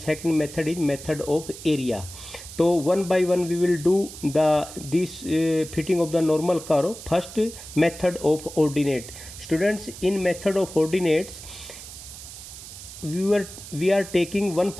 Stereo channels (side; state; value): right; noise; hiss, 14 dB below the sound